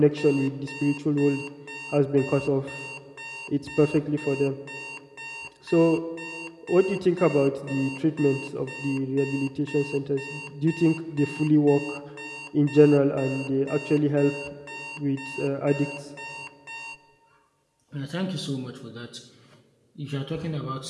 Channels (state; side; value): identical; both; correlation 1.00